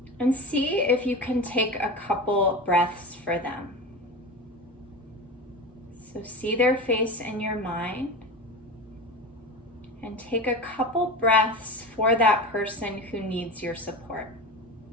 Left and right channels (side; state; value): both; normal; correlation 0.27